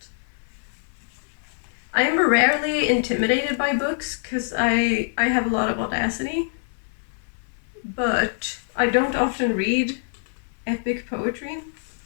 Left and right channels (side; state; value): right; silent; 62 dB below the other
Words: I am rarely intimidated by books because I have a lot of audacity, but I don't often read epic poetry,